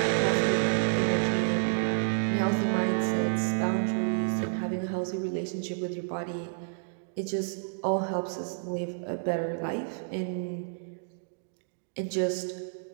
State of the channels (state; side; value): silent; left; digital silence